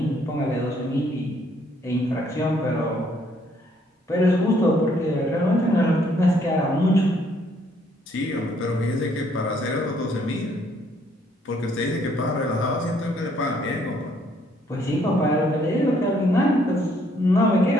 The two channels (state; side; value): normal; both; correlation 0.66